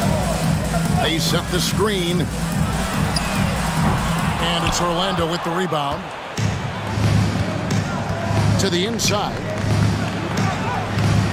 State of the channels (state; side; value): identical; both; correlation 1.00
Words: They set the screen. And it's Orlando with the rebound. To the inside.